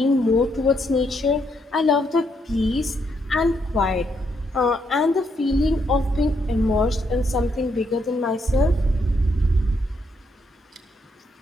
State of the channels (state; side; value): normal; both; correlation 0.76